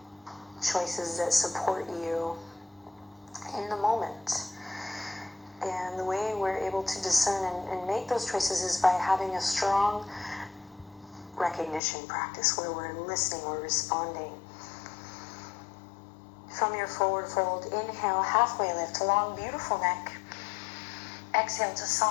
choices that support you in the moment. And the way we're able to discern and make those choices is by having a strong recognition practice where we're listening, we're responding. From your forward fold, inhale, halfway lift, long, beautiful neck. Exhale to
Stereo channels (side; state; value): right; drops out; at 11.8 s